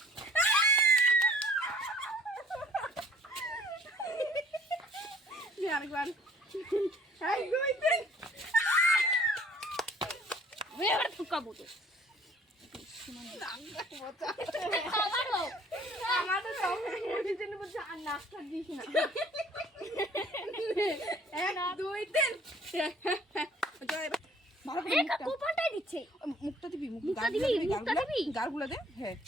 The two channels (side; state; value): both; normal; correlation 0.54